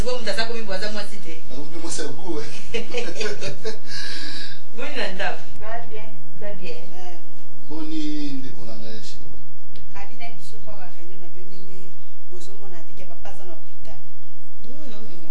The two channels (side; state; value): both; identical; correlation 1.00